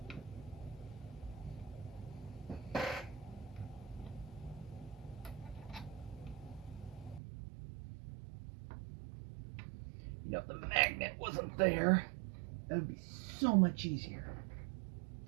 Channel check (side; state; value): left; drops out; at 7.2 s